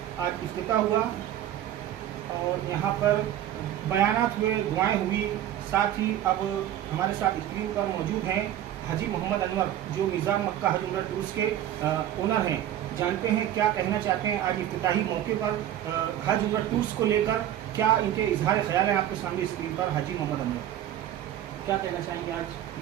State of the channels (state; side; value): quieter; left; 11.8 dB